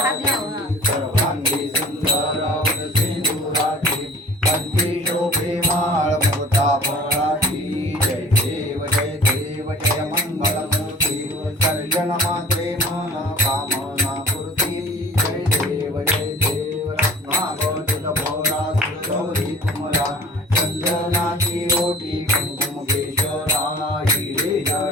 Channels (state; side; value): normal; both; correlation 0.46